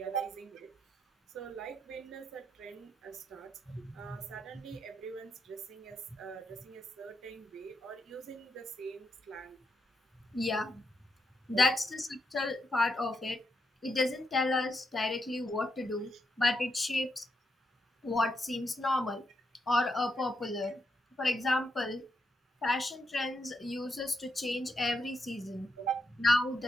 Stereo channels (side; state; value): both; normal; correlation 0.82